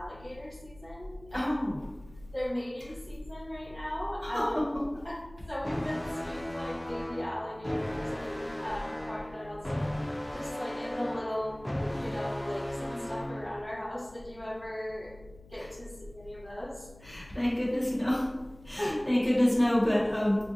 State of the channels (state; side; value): noise; left; hum, 22 dB below the sound